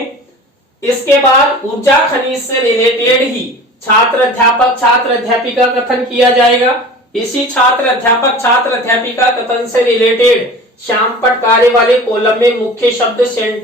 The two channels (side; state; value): both; normal; correlation 0.39